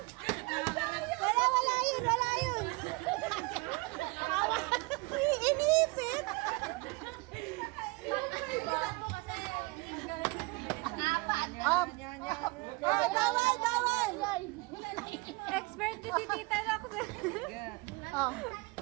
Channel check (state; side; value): quieter; left; 26.0 dB